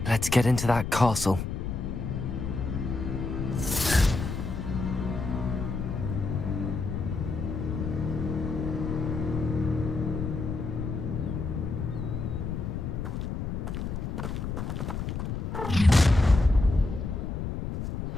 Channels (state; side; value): noise; left; rumble, 3 dB below the sound